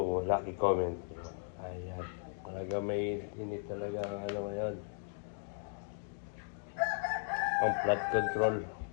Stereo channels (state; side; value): silent; right; digital silence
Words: Lucky Comment. Ayan. Talaga may init talaga ang ano ngayon. Ang flood control.